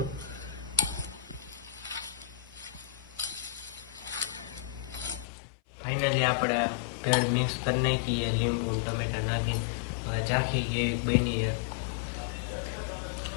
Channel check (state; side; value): drops out; right; at 5.2 s